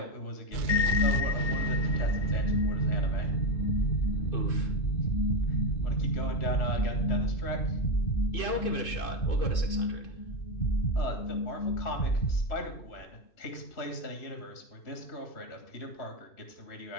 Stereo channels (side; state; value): right; late; 2.6 ms